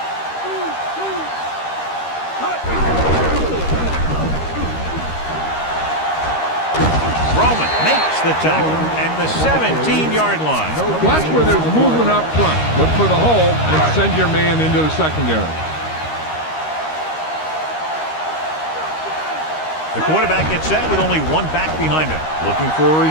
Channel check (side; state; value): right; late; 13 ms